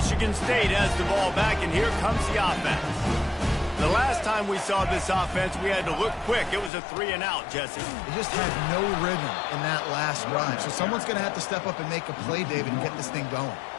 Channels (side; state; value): right; drops out; at 6.7 s